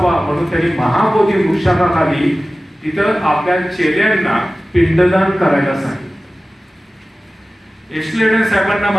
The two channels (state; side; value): normal; both; correlation 0.96